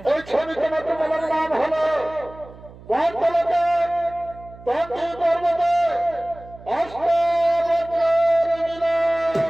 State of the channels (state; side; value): noise; right; hum, 19 dB below the sound